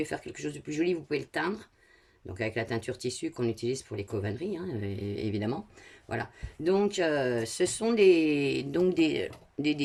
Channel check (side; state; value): both; identical; correlation 1.00